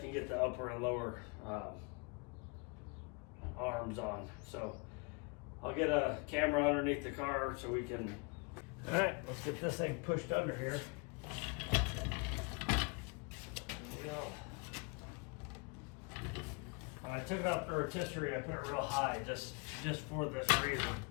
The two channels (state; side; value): quieter; right; 31.7 dB